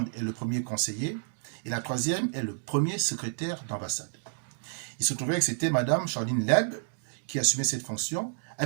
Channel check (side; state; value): left; silent; digital silence